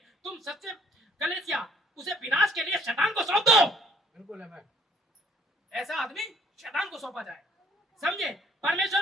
तुम सच्चे कलीसिया उसे विनाश के लिए शैतान को सौंप दो। बिल्कुल आमीन। ऐसा आदमी शैतान को सौंपा जाए। समझे? परमेश्वर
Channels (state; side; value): normal; both; correlation 0.62